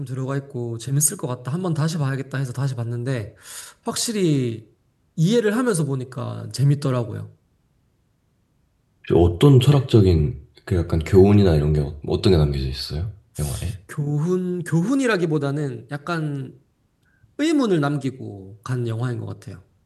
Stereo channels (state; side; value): identical; both; correlation 1.00